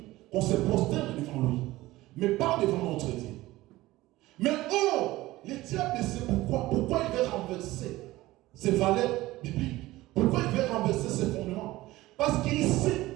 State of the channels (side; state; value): left; quieter; 17.8 dB